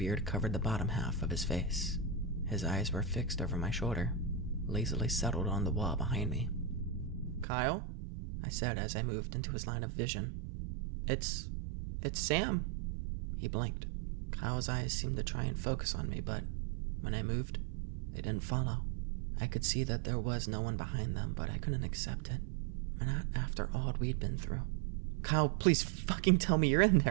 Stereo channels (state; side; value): drops out; left; at 7.5 s